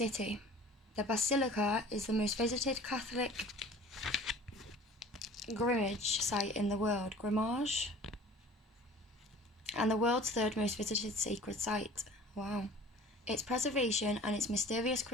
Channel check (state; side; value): normal; both; correlation 0.45